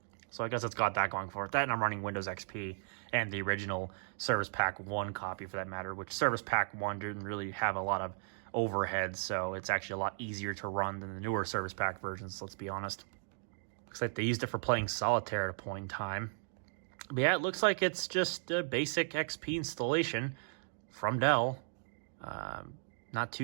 So I guess it's got that going for it. That, and I'm running Windows XP and the original Service Pack 1 copy for that matter, which Service Pack 1 didn't really have a lot of overhead, so it's actually a lot easier to run than the newer Service Pack versions, let's be honest. Looks like they used it for playing solitaire at a point in time. But yeah, it looks like it's just a basic XP installation from Dell. Not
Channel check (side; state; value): left; silent; digital silence